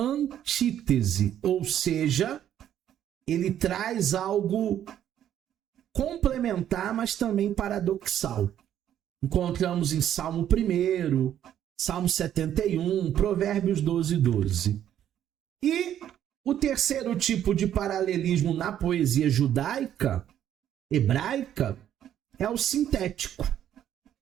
ou seja, ele traz algo complementar, mas também paradoxal. Encontramos em Salmo 1, Salmo 71, Provérbios 12, 12. E o terceiro tipo de paralelismo na poesia judaica, hebraica, é o sintético.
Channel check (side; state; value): left; quieter; 10.7 dB